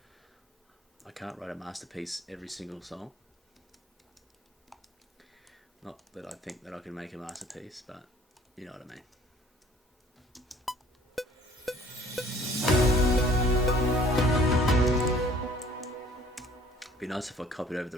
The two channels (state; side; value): normal; both; correlation 0.55